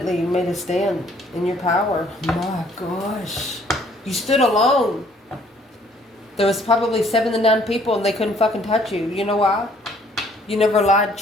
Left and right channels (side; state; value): both; normal; correlation 0.61